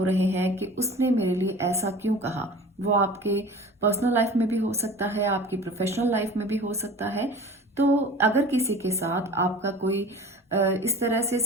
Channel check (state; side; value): normal; both; correlation 0.40